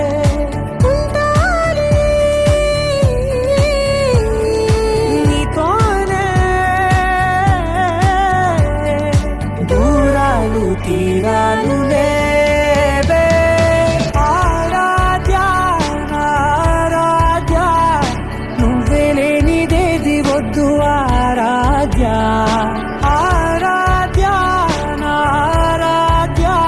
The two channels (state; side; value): identical; both; correlation 1.00